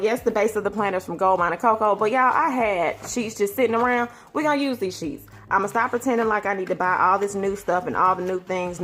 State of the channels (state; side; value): identical; both; correlation 1.00